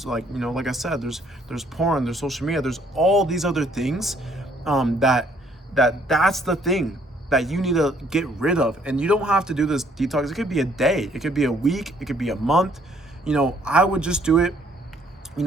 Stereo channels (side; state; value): both; normal; correlation 0.64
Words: like I said, there's porn, there's social media, there's all these other things, that's the thing that you need to get rid of. And you don't have to do this detox. It could be a day, it could be a week, it could be a month. I would just do it.